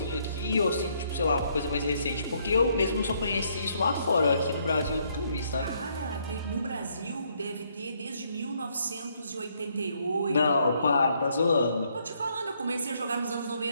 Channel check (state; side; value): inverted; both; correlation -0.71